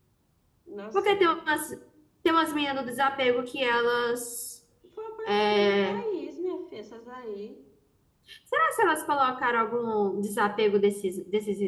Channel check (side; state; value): both; identical; correlation 1.00